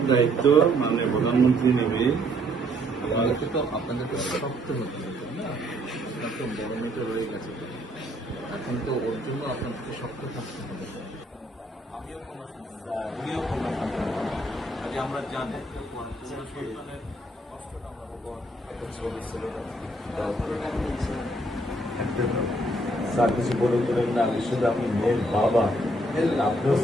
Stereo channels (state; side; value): normal; both; correlation 0.68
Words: দায়িত্ব মানে প্রধানমন্ত্রী নেবে। আপনাদেরকে শক্ত হতে হবে না, আপনার তো বড় মেয়েটা রয়ে গেছে, এখন তো ওর জন্য আপনাদেরকে শক্ত থাকতে হবে। আমিও কোনো উনিও কোনো আজ আমরা জানি সন্তানের কষ্টটা আমরা স্যার কিছু বলে দিলেন না, আমি শুধু আপনি মেয়ের বাবা, আপনিও